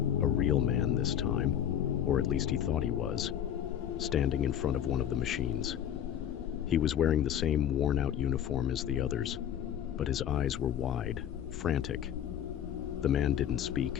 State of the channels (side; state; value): right; quieter; 9.9 dB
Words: a real man this time, or at least he thought he was, standing in front of one of the machines. He was wearing the same worn-out uniform as the others, but his eyes were wide, frantic. The man didn't